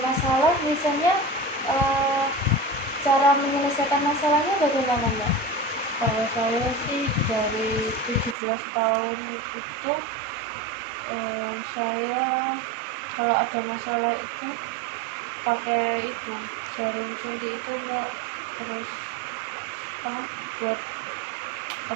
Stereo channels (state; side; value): drops out; left; at 8.3 s